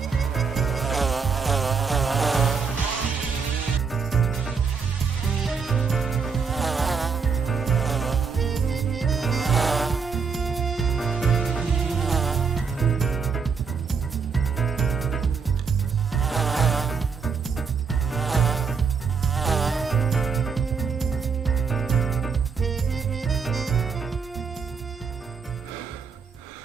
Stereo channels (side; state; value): left; quieter; 5.7 dB